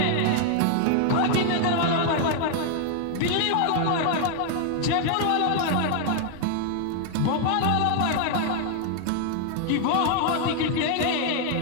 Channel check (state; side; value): different; both; correlation 0.00